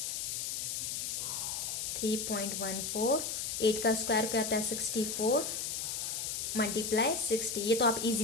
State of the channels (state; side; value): noise; left; hiss, 2 dB below the sound